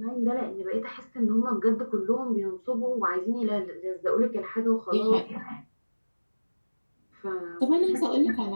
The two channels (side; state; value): both; inverted; correlation -1.00